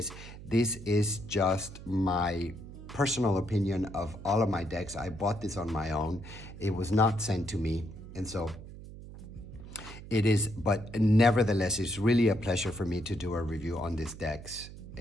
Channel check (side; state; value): right; noise; hum, 14 dB below the sound